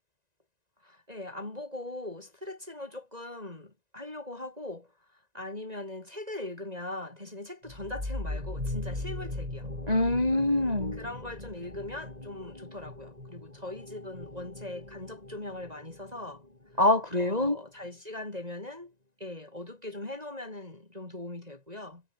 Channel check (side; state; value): left; late; 1.9 ms